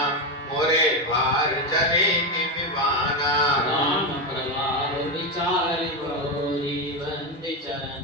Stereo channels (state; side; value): normal; both; correlation 0.11